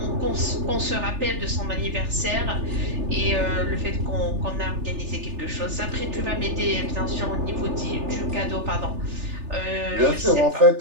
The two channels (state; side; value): late; left; 3.4 ms